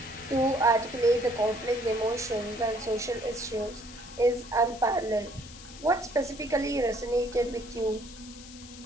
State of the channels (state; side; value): noise; left; hiss, 17 dB below the sound